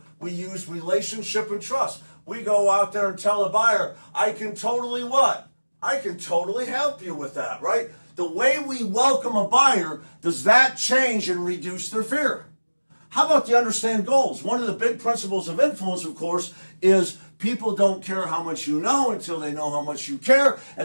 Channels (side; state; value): both; inverted; correlation -1.00